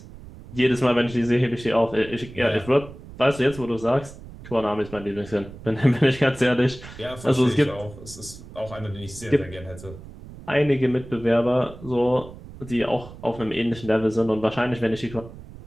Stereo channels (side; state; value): right; noise; rumble, 16 dB below the sound